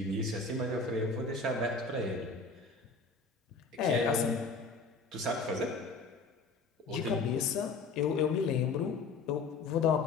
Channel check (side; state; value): right; quieter; 4.2 dB